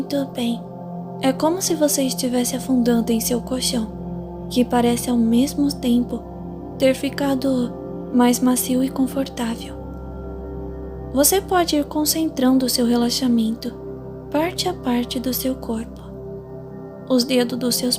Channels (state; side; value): identical; both; correlation 1.00